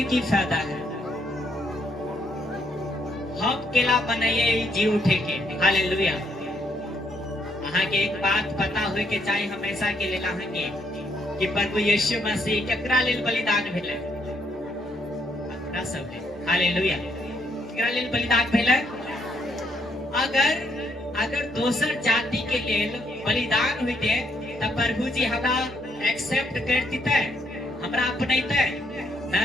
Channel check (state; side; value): normal; both; correlation 0.73